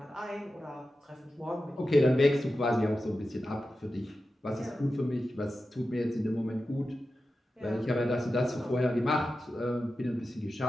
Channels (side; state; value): both; normal; correlation 0.92